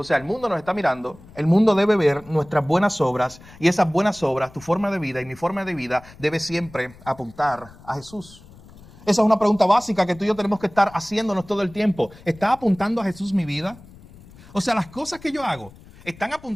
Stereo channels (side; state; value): left; noise; rumble, 22 dB below the sound